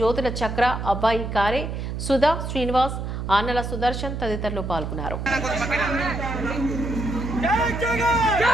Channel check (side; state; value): right; noise; hum, 5 dB below the sound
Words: జ్యోతుల చక్ర, అబ్బాయి కారే, సుధా, శ్రీనివాస్, ఆనల సుదర్శన్ తదితరులు పాల్గొన్నారు.